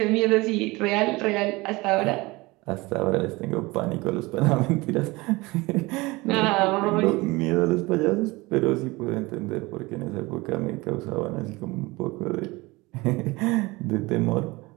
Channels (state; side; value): quieter; left; 22.6 dB